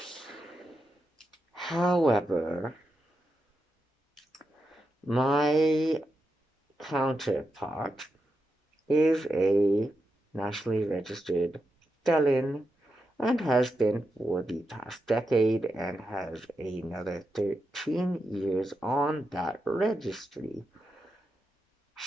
However, my counterpart is a nationally registered felon and has been for the past decade and has another 13 years on that registry.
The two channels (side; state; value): both; normal; correlation 0.87